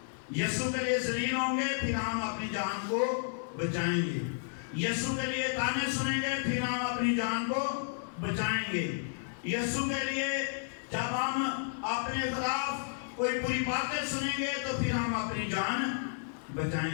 یسوع کے لیے ذلیل ہوں گے، پھر ہم اپنی جان کو بچائیں گے۔ یسوع کے لیے تانے سنیں گے، پھر ہم اپنی جان کو بچائیں گے۔ یسوع کے لیے جب ہم اپنے خلاف کوئی بری باتیں سنیں گے تو پھر ہم اپنی جان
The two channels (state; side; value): silent; right; 56 dB below the other